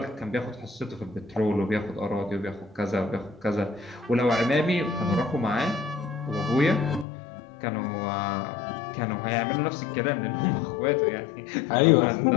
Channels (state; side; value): drops out; right; at 7.1 s